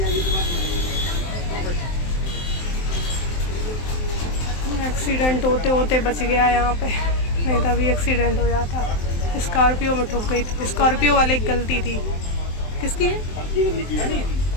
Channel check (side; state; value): right; late; 23 ms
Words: एक्सीडेंट होते होते बच गया यहाँ पे, नहीं तो अभी एक्सीडेंट हो जाता। स्कॉर्पियो में ठुक गई थी, स्कॉर्पियो वाले की गलती थी। किसकी है?